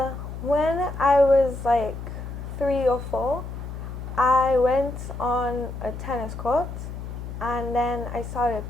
when I was like 3 or 4, I went on a tennis court and then I started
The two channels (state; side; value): noise; left; hum, 8 dB below the sound